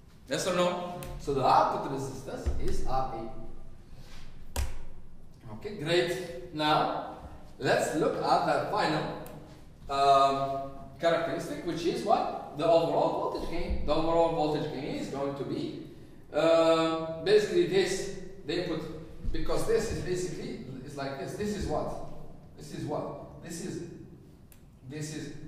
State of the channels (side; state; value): both; identical; correlation 1.00